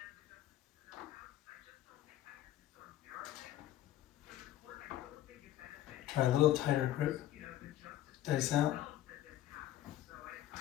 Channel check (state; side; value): quieter; right; 13.3 dB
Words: Try a little tighter grip. Dice out.